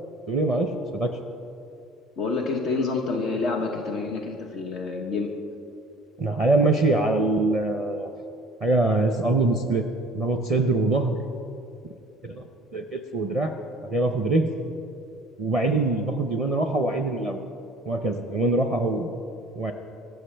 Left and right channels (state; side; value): normal; both; correlation 0.49